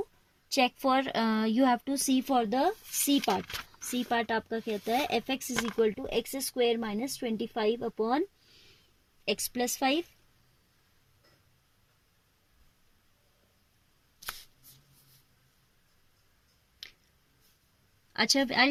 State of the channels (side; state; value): both; identical; correlation 1.00